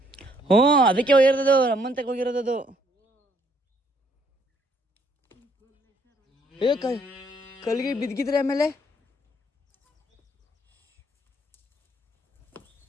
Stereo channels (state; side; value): normal; both; correlation 0.67